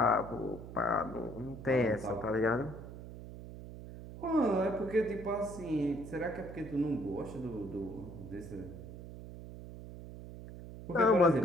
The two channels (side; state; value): right; noise; hum, 12 dB below the sound